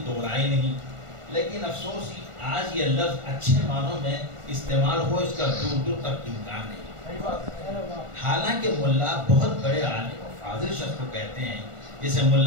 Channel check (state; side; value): late; left; 1.4 ms